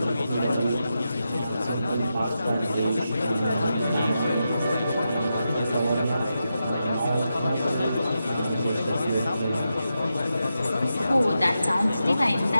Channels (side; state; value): both; inverted; correlation -0.88